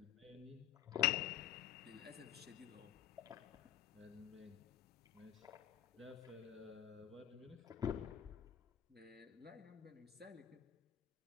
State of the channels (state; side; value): quieter; right; 11.9 dB